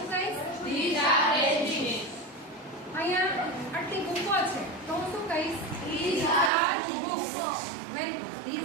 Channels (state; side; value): drops out; left; at 6.5 s